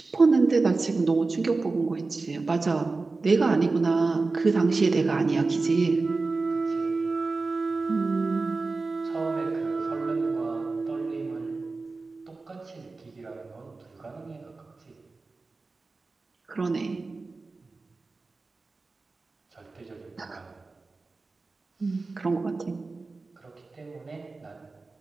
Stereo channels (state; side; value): quieter; left; 3.7 dB